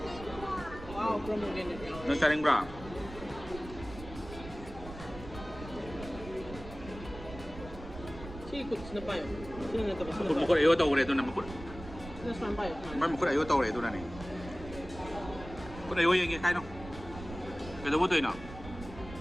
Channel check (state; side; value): noise; right; rumble, 13 dB below the sound